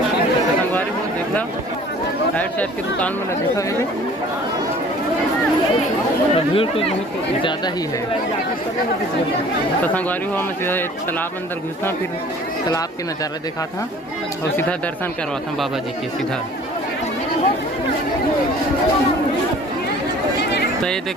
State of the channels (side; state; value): both; normal; correlation 0.49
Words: संगवारी हो देखा राइट साइड की दुकान में देखा है तो भीड़ तो बहुत ज़्यादा ही है। तो संगवारी हुआ मैं सीधा तालाब अंदर घुसा, फिर तालाब के नज़ारा देखा था और सीधा दर्शन करवा था बाबा जी के सीधा। तो ये